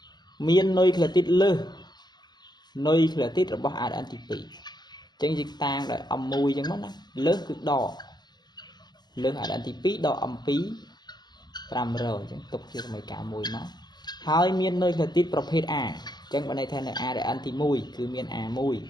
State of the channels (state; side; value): late; right; 0.20 ms